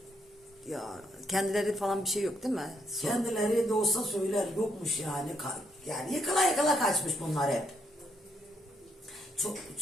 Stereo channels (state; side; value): normal; both; correlation 0.75